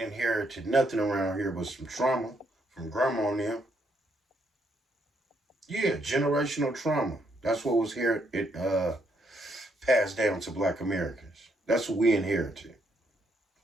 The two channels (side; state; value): both; normal; correlation 0.74